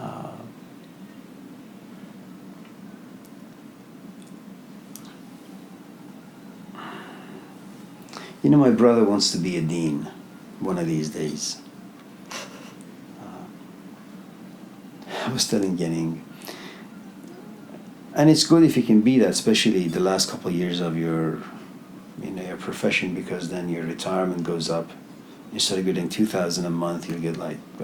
You know, my brother wants to be a dean one of these days. I was telling Genning, and it's good if you can be that, especially the last couple of years of your, you know, your profession, because then your retirement goes up. Instead of getting $2,000 a month, you'll get like, I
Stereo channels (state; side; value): identical; both; correlation 1.00